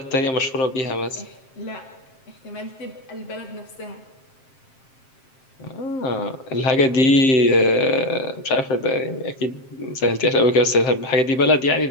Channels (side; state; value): right; late; 7.6 ms